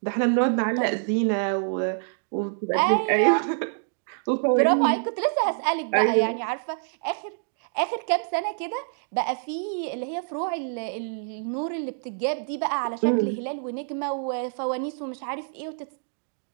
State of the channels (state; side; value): silent; left; digital silence